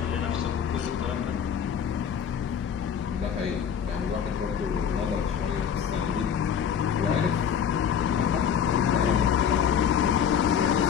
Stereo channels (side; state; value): right; quieter; 8.0 dB